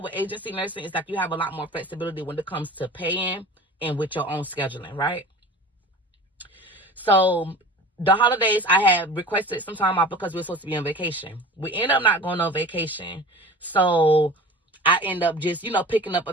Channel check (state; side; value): normal; both; correlation 0.39